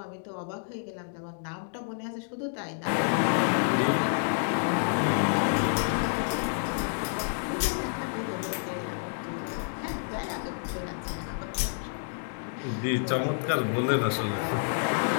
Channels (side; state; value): right; silent; digital silence